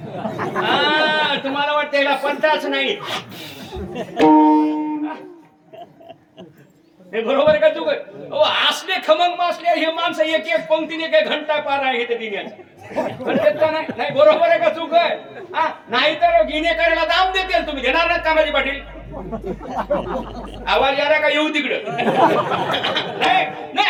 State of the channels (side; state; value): both; identical; correlation 1.00